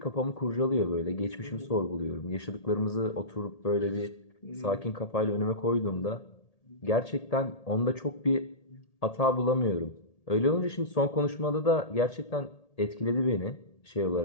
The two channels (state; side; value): late; right; 1.8 ms